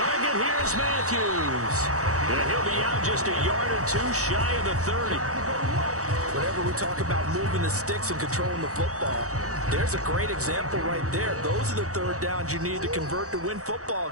Here's Matthews. And he'll be out just a yard or two shy of the 30. Whenever we talk about moving the sticks and controlling the football, there's a great example right there. Those are the third downs you need to convert to win football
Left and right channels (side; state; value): left; late; 0.65 ms